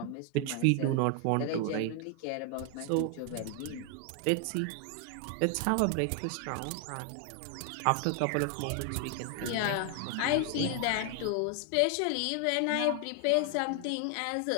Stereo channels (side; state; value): both; different; correlation 0.00